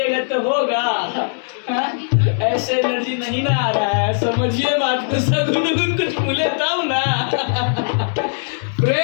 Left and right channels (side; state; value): right; silent; digital silence